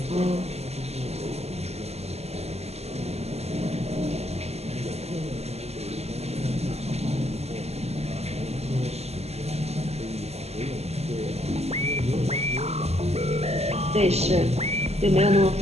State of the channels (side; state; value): left; late; 0.30 ms